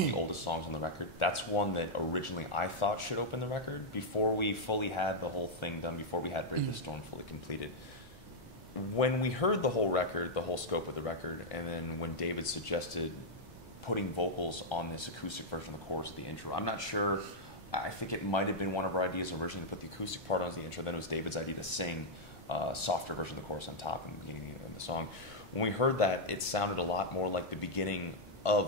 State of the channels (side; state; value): both; normal; correlation -0.04